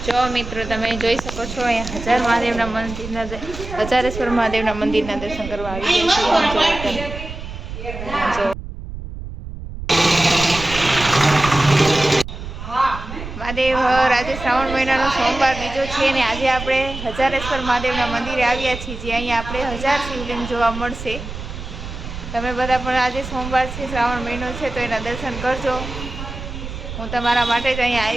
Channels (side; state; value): right; noise; rumble, 9 dB below the sound